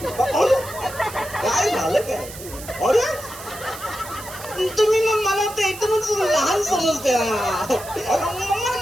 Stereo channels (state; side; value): noise; right; hiss, 14 dB below the sound